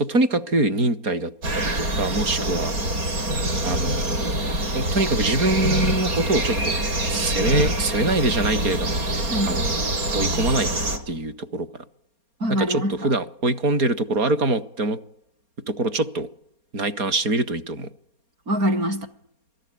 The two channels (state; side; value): late; left; 4.3 ms